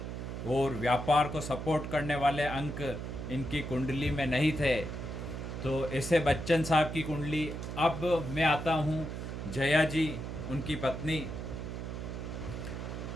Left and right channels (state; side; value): noise; right; hum, 6 dB below the sound